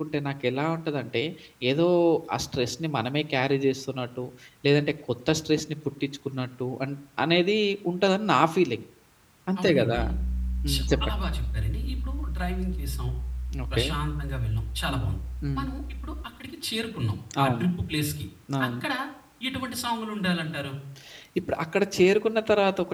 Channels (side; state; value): both; identical; correlation 1.00